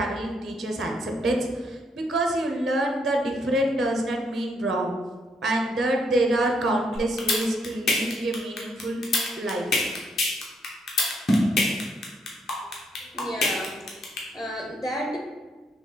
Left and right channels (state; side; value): normal; both; correlation 0.74